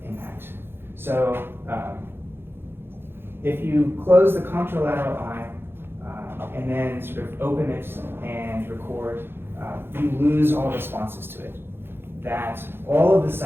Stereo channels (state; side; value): late; left; 0.11 ms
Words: impact. So if you close the contralateral eye and then sort of open it and record, you lose all responses to it. That all of the